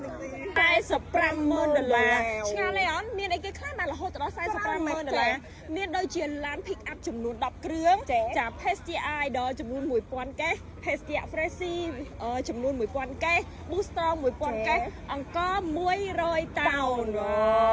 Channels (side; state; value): both; identical; correlation 1.00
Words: $45,000ឆ្ងាលទេអត់មានអីគេខ្លះបានរហូតដល់$45,000មានដូចជាឡាន pick up ចំនួន10គ្រឿងចា Pestia Idol ចំនួន1000កេស Pestia Freshie ចំនួន1000កេស Boostrong 1000កេសអង្គ100តោន